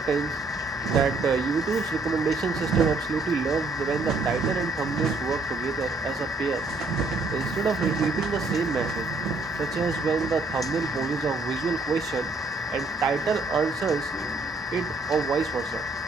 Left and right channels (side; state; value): left; quieter; 3.1 dB